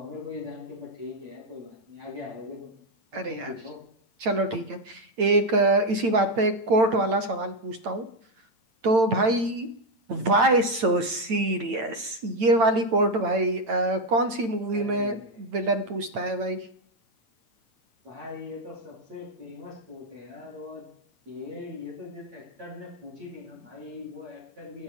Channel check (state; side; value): late; left; 8.9 ms